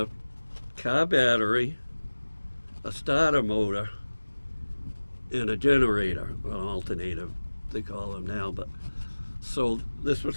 car battery, a starter motor, and a generator, an alternator, they call them now. But so this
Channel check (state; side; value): inverted; both; correlation -1.00